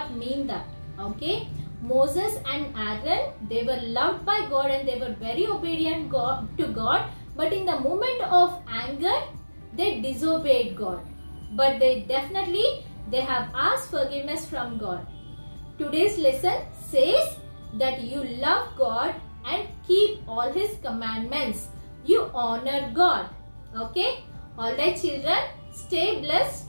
mean that. Okay. Moses and Aaron, they were loved by God and they were very obedient to God. But in the moment of anger, they disobeyed God. But they have asked forgiveness from God. Today's lesson says that you love God and keep all His commandments. You honor God. Okay? Alright children, stay blessed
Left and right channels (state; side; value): inverted; both; correlation -1.00